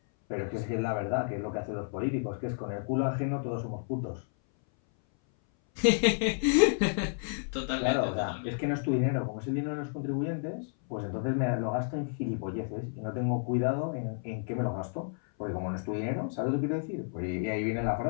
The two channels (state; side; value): silent; right; 57 dB below the other